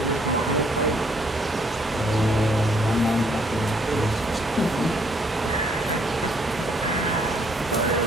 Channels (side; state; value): both; normal; correlation 0.66